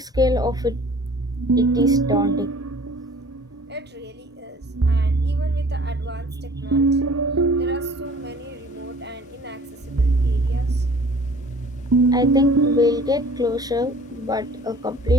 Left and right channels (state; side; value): normal; both; correlation 0.49